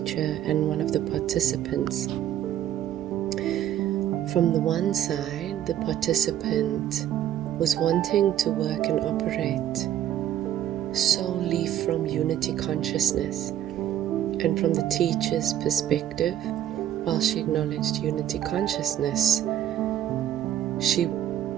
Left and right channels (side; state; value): left; quieter; 11.4 dB